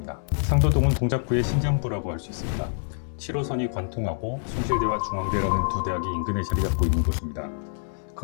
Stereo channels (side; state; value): right; silent; 61 dB below the other